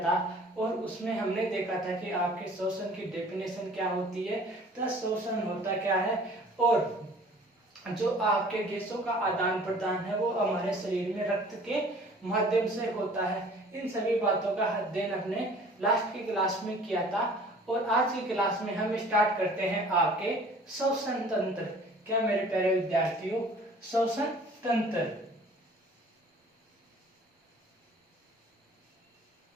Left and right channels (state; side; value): normal; both; correlation 0.50